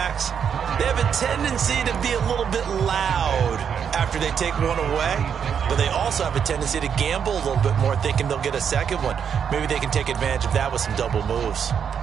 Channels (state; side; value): quieter; left; 7.6 dB